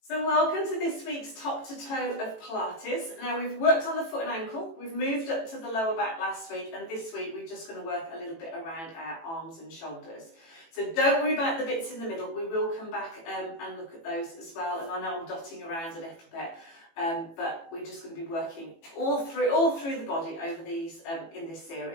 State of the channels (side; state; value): right; late; 18 ms